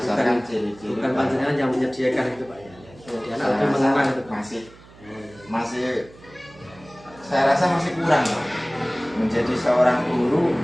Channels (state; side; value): noise; right; hum, 23 dB below the sound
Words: ciri-ciri. Bukan panjenengan yang menyediakan itu Pak ya. Jadi anak Saya lebih rasa mengenal itu Pak. masih saya rasa masih kurang Pak. Menjadi seorang guru